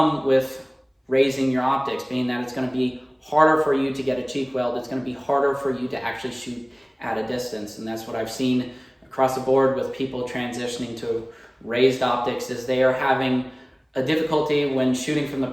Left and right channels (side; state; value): both; identical; correlation 1.00